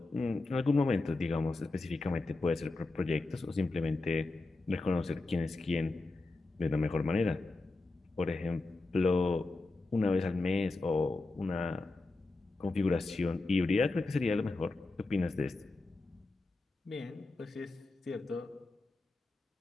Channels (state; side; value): quieter; right; 3.2 dB